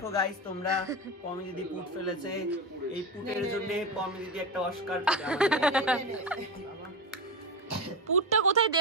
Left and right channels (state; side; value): normal; both; correlation 0.19